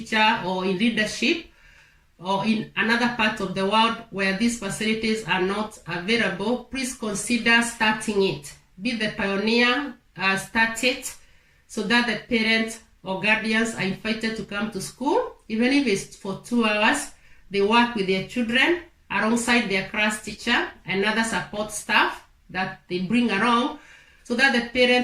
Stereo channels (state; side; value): identical; both; correlation 1.00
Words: or in leadership or in another part of the world where these facilities are not available, please consider starting it. Be the pioneer, start it, so that the parents or guardians are invited to come to school. Even if it's for 2 hours, they work with their children alongside their class teacher and other support staff that they bring along, so that the